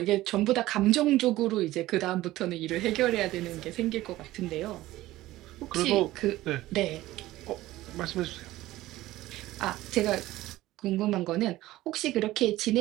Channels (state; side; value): quieter; left; 16.5 dB